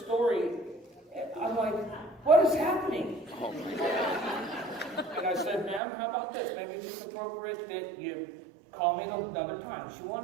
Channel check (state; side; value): drops out; left; at 5.8 s